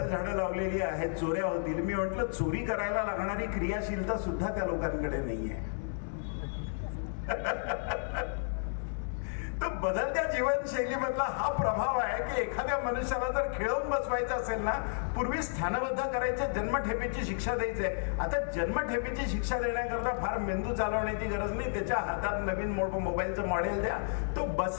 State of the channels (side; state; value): right; silent; digital silence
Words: झाडं लावलेली आहेत, चोऱ्या होतील. मी म्हटलं, चोरी करायला लागणारी क्रियाशीलता सुद्धा त्या लोकांकडे नाहीये. तर बदलत्या जीवनशैलीमधला हा प्रभाव आहे की एखाद्या मनुष्याला जर खिळवून बसवायचं असेल ना, पूर्वी स्थानबद्ध करायचे, जन्मठेपेची शिक्षा द्यायची आहे. आता जन्मठेपेची शिक्षा देण्याकरता फार मेंदू चालवण्याची गरज नाही. त्याच्या हातात नवीन मोबाईलचं मॉडेल द्या, तो